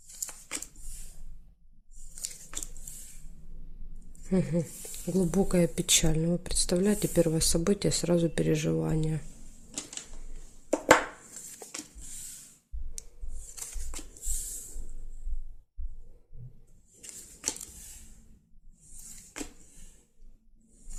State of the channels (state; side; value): identical; both; correlation 1.00